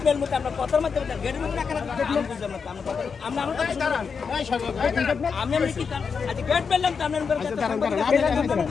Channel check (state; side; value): quieter; right; 5.8 dB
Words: mail মতে আমরা কথার মধ্যে গেট মেল না করা আমি বুঝলাম না আমরা আমরা আমি আমি কি আজ গেট মেললাম তো আমরা